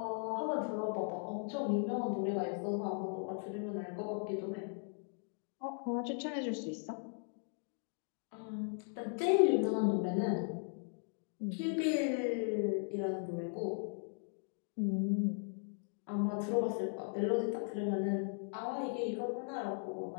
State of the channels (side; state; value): right; silent; 52 dB below the other